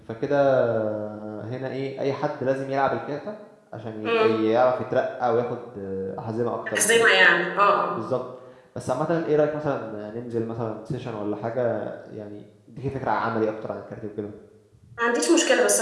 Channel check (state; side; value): identical; both; correlation 1.00